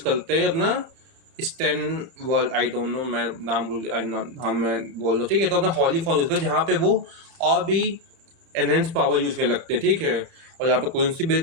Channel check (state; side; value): late; left; 30 ms